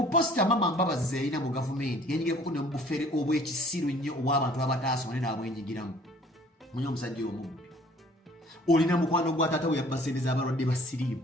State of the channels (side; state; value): both; normal; correlation 0.55